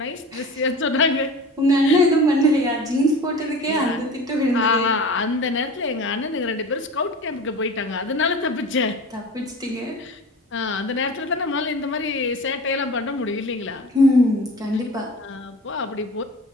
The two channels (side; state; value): both; normal; correlation 0.36